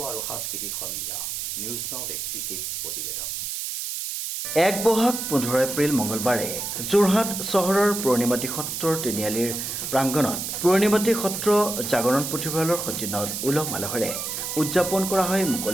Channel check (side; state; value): right; noise; hiss, 4 dB below the sound